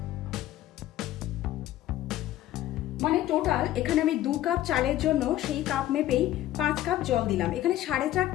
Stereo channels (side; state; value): right; quieter; 13.8 dB